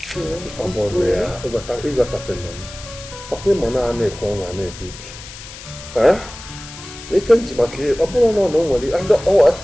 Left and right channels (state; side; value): noise; left; hiss, 15 dB below the sound